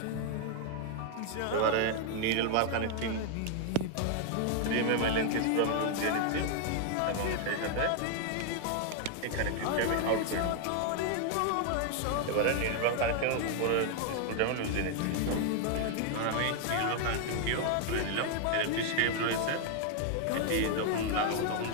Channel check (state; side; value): different; both; correlation 0.00